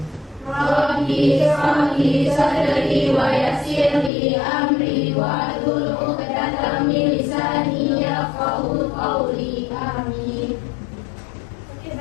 Rabbi shrah li sadri wa yassir li amri wahlul 'uqdatam min lisani yafqahu qawli. Amin. Oke,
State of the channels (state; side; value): drops out; right; at 4.1 s